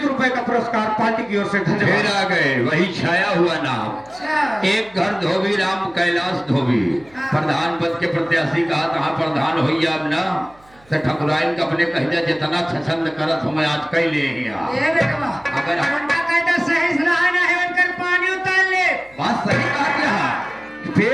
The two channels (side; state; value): right; noise; hum, 29 dB below the sound